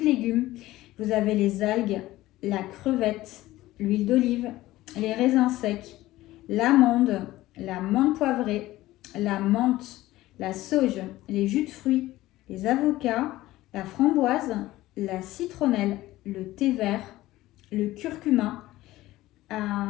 légumes, vous avez les algues, la crevette, l'huile d'olive, les raisins secs, l'amande, la menthe poivrée, la menthe, la sauge, les jus de fruits, les avocats, la framboise, la citronnelle, le thé vert, le curcuma,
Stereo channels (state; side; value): quieter; right; 16.7 dB